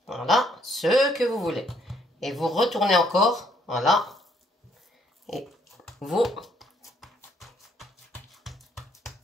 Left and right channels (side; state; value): both; normal; correlation 0.67